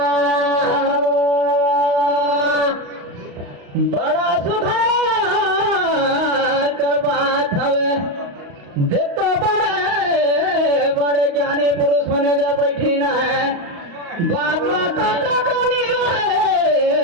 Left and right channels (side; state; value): left; late; 35 ms